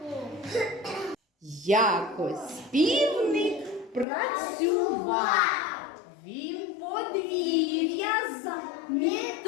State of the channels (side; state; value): right; drops out; at 4.0 s